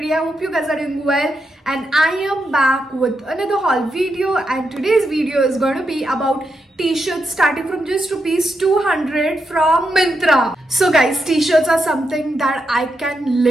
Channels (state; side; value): normal; both; correlation 0.84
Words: I hope you guys are doing well and I am back with another haul video, and today's video is going to be about t-shirts starting from just rupees 200 from Myntra. So guys, t-shirts are something that I can